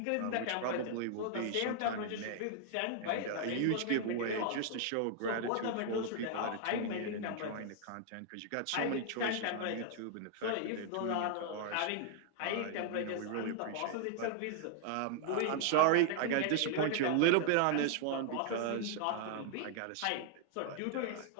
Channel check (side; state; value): both; different; correlation 0.00